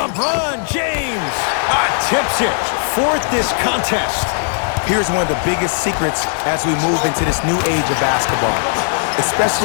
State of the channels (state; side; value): silent; right; digital silence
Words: James tips it. Fourth this contest. Here's one of the biggest secrets as we move into this new age of basketball,